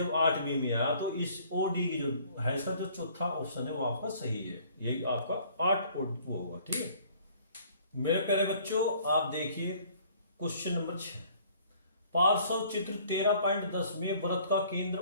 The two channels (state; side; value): inverted; both; correlation -0.56